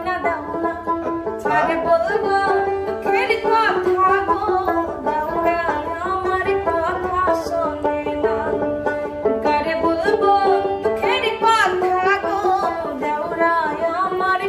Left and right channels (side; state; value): both; identical; correlation 1.00